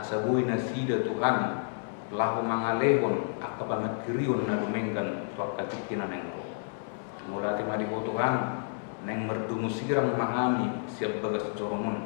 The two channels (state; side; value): silent; right; digital silence